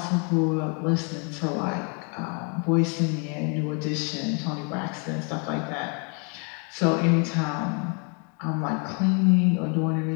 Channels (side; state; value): right; quieter; 36.6 dB